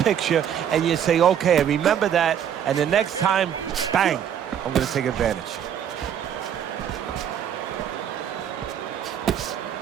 and you say, okay, I remember that, and the next time, bang, I'm going to take advantage.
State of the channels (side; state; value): left; quieter; 9.1 dB